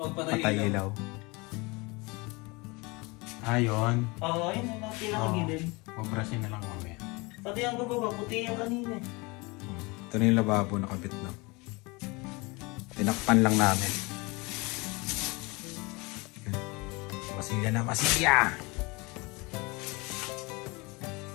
ilaw. Ayun. Oo, yun ang pinakagilid. Mabrasin na lang mamaya. Pati ang gababa, puti yung kanina. Ito na yung lababo nakabit na. Tinakpan lang namin. Masilya na, masilya!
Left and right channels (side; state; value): right; quieter; 26.1 dB